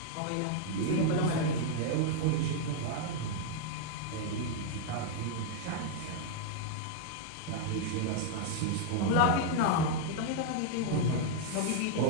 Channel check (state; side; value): different; both; correlation -0.01